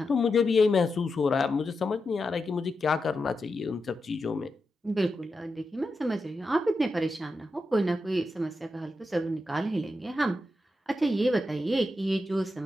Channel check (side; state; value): both; normal; correlation 0.88